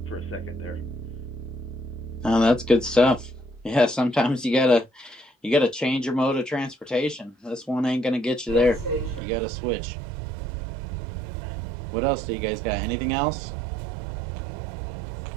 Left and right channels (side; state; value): left; drops out; at 9.2 s